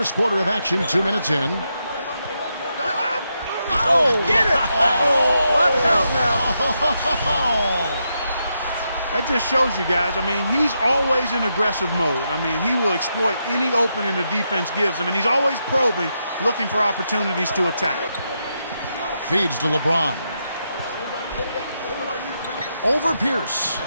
quarter of action, 2 minutes in. Oh, get it! Oh, watch out now. That just shows you guys, I mean, he's always in aggressive mode. I mean, he will exploit any opening the defense gives him, and he's always probing, looking for opportunities to attack. Feeds to LeBron. Over Pierce.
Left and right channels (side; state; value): both; inverted; correlation -0.83